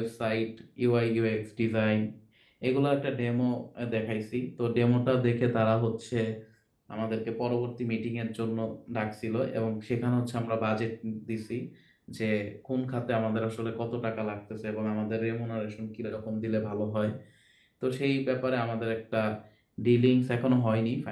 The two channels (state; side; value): identical; both; correlation 1.00